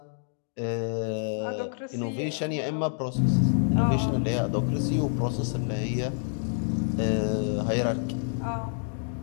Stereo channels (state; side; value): silent; right; digital silence